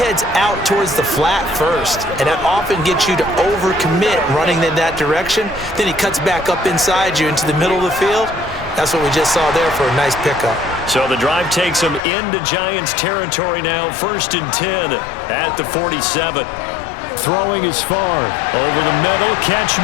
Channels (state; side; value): drops out; right; at 12.0 s